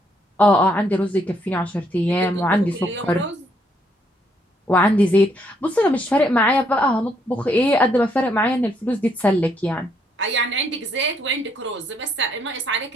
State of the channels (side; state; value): both; normal; correlation 0.72